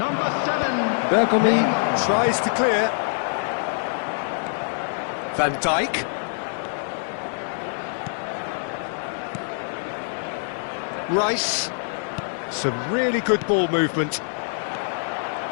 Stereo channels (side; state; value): right; silent; 60 dB below the other